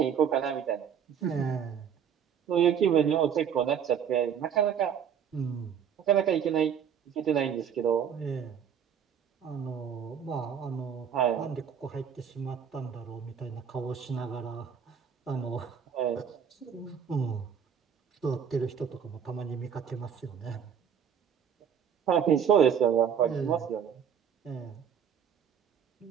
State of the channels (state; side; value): quieter; left; 7.9 dB